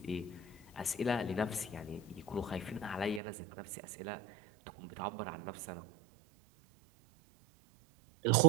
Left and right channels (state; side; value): drops out; left; at 3.2 s